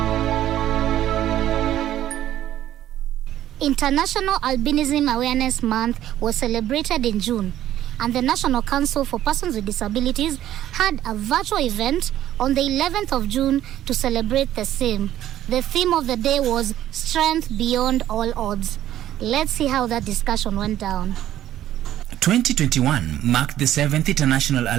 International Albinism Awareness Month was celebrated in June, and the National Council for Persons with Disabilities had a virtual event on the 11th of June to celebrate the same. The theme of the day was Strength Beyond All Odds. Let's see how that discussion went down. 2021 marked the 7th International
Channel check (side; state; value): left; quieter; 12.4 dB